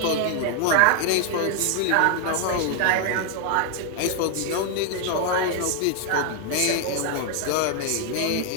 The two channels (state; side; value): different; both; correlation 0.00